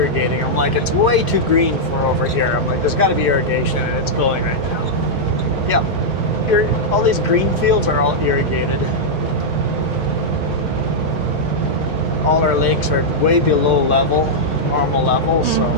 I'm like, it's way too green for over here. I'm like, there's got to be irrigation, and it's going right now. Yeah, all these green fields are all irrigated. All our lakes are way below normal level, so.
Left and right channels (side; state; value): both; normal; correlation -0.06